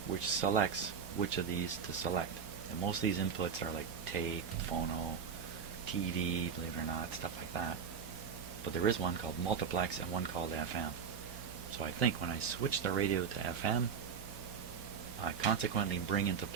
which selects which of these to select. And most of these inputs are like tape, phono, TV, believe it or not, stuff like that. But there is one called multiplex and one called FM. So I think when I switch the radio to FM, I consequently bring into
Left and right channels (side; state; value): left; quieter; 6.7 dB